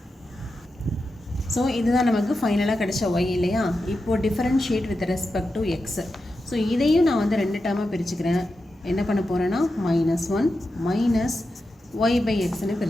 ஸோ இதுதான் நமக்கு ஃபைனலாக கிடைச்ச ஒய் இல்லையா. இப்போது differentiate with respect to X. So இதையும் நான் வந்து 2 டேர்மாக பிரிச்சுக்கிறேன். என்ன பண்ண போகிறேன்னா -1 மைனஸ் ஒய் பை எக்ஸ்ன்னு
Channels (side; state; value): both; normal; correlation 0.89